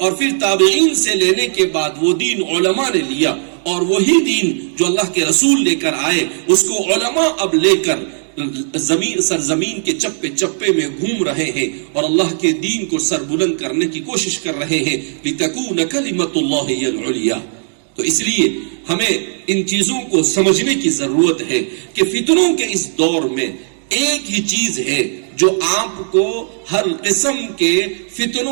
پھر تابعین سے لینے کے بعد وہ دین علماء نے لیا، اور وہی دین جو اللہ کے رسول لے کر آئے اس کو علماء اب لے کر سرزمین کے چپے چپے میں گھوم رہے ہیں اور اللہ کے دین کو سر بلند کرنے کی کوشش کر رہے ہیں۔ لِتَكُونَ كَلِمَةُ اللَّهِ هِيَ الْعُلْيَا۔ تو اس لیے ہمیں ان چیزوں کو سمجھنے کی ضرورت ہے کہ فتنوں کے اس دور میں ایک ہی چیز ہے جو آپ کو ہر قسم کے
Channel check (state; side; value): silent; left; digital silence